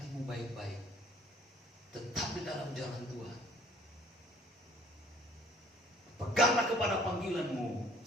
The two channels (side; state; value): both; normal; correlation 0.55